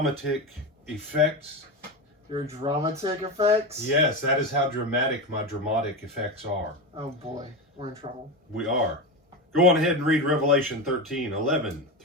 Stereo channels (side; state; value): both; normal; correlation 0.18